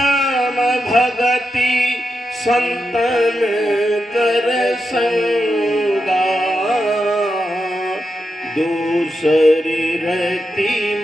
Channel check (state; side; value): normal; both; correlation 0.87